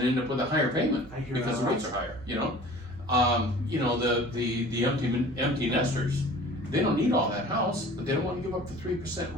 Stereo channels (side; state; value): right; noise; hum, 19 dB below the sound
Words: end up with a higher payment because the rates are higher, you know? The empty nesters, they don't need all that house, but they don't want to give up the 3%